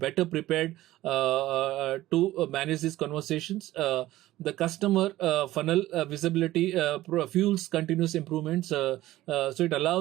prepared to manage these conversations. The customer funnel visibility fuels continuous improvements. So it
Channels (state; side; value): quieter; left; 15.9 dB